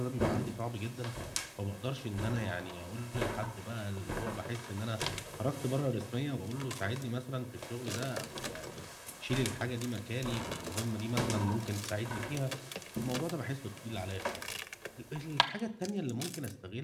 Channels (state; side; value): identical; both; correlation 1.00